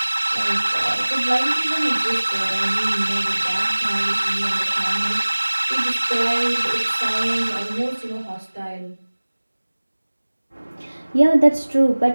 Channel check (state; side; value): inverted; both; correlation -1.00